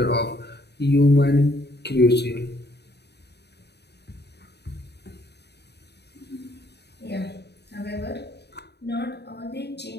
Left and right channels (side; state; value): right; late; 0.48 ms